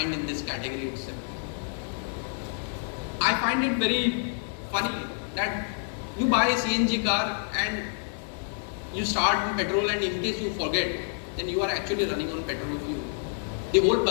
in this category itself. I find it very funny that you buy a CNG car and you start in petrol, and in case you forget, then you are actually running on petrol fuel. The whole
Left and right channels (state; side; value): silent; right; 59 dB below the other